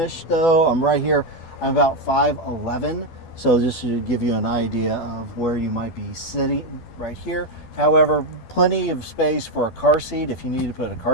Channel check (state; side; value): late; right; 12 ms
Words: though. I'm right here. I'm about 5'11", so this should give you an idea of where you might be sitting right here. However, plenty of space for a car seat if you need to put a